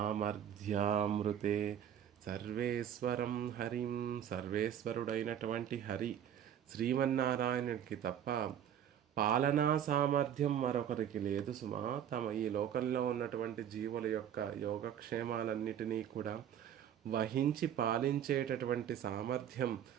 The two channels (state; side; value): quieter; left; 9.7 dB